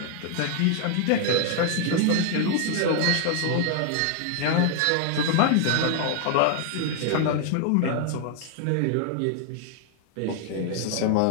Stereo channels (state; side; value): different; both; correlation 0.00